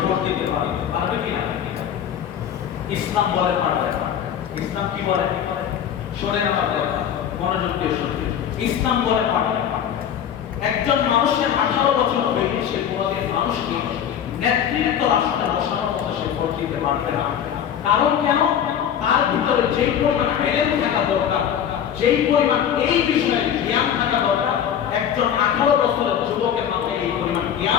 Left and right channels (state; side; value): quieter; right; 9.2 dB